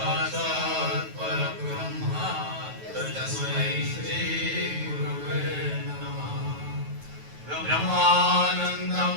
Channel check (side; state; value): left; late; 9.3 ms